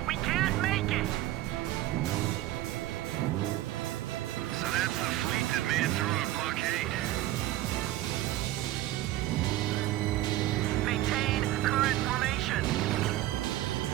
We can't make it! So that's the fleet that made it through our blockade. Maintain current formation.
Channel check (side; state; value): left; quieter; 15.2 dB